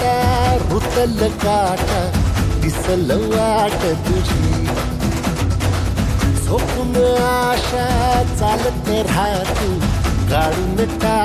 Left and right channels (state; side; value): identical; both; correlation 1.00